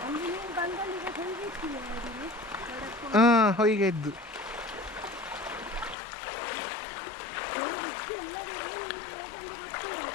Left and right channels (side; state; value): right; drops out; at 6.0 s